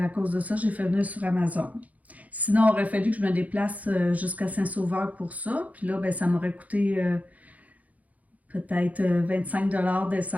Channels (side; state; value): left; late; 0.074 ms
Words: cause de ça, j'ai fait venir sur Amazon. Sinon, il aurait fallu que je me déplace jusqu'à Saint-Sauveur pour ça. Puis là, ben, ça m'aurait coûté peut-être 25 $